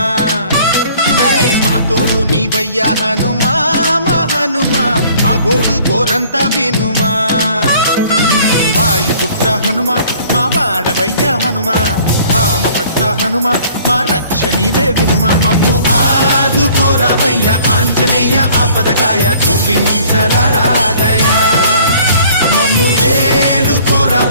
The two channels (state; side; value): inverted; both; correlation -0.54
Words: మా తోడు నీవయ్య హనుమా మా హనుమా మా గోడు గోరంత వినుమా వాయుపుత్ర హనుమా మా వాడవయ్య హనుమా రామ భక్త హనుమా మా రక్షణీదే వినుమా మమ్ము ఆదుకోరావయ్య ఆంజనేయ ఆపదకాయ చూపించరాదయా మమ్ము ఏలు